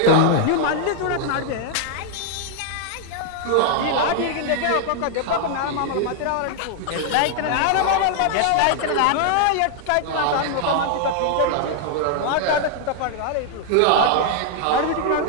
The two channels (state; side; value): different; both; correlation 0.00